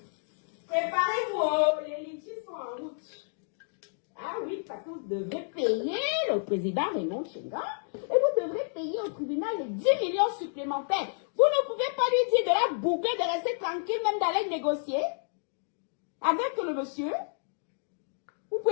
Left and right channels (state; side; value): silent; right; digital silence